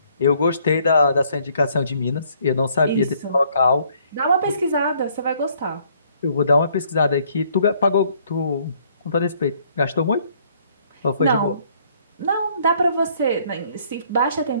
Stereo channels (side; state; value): both; inverted; correlation -0.64